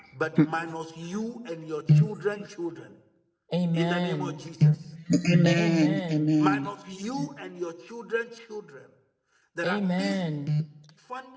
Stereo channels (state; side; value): identical; both; correlation 1.00